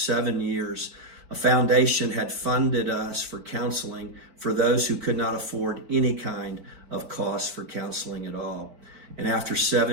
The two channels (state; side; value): late; left; 4.5 ms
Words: years, a foundation had funded us for counseling for those who could not afford any kind of cost for counseling at all. And after